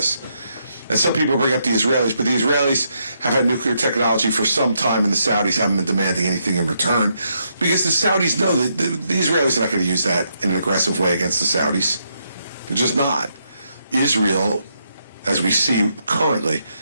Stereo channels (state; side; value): inverted; both; correlation -0.78